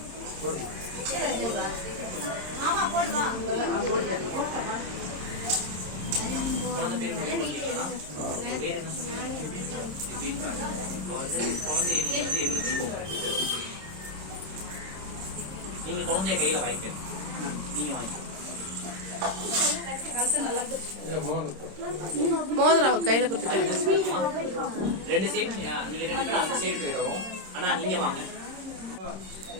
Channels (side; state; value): left; late; 26 ms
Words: மாமா போடுவா. குழந்தை பேர் பேர் என்ன சொன்னீங்க? குழந்தைய நீங்க எழுதிக்கோங்க. நீங்க குழந்தைய கையில வாங்கிக்க. நீங்க வாங்கிக்க. மோதிரம் கையில கொடுத்துட்டாங்க. ரெண்டு சைடு நீங்க ரெண்டு பேரும் அந்த சைடு போயிடுவோம். ஆனா நீங்க வாங்க.